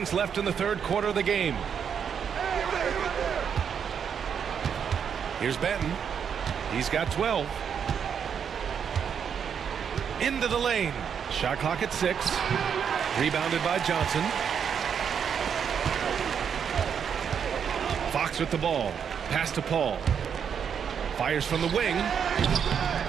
left in the third quarter of the game. Here's Benton. He's got 12. Into the lane. Shot clock at 6. Rebounded by Johnson. Fox with the ball. Pass to Paul. Fires from the wing.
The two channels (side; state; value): left; quieter; 7.5 dB